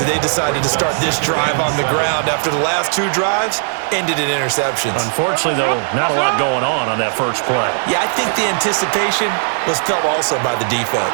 that they decided to start this drive on the ground after the last 2 drives ended in interceptions. Unfortunately, though, not a lot going on that first play. Yeah, I think the anticipation was felt also by the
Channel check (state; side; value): silent; left; digital silence